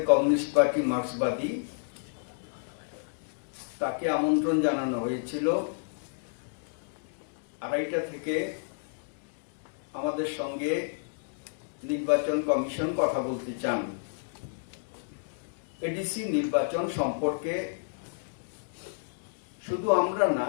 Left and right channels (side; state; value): right; silent; digital silence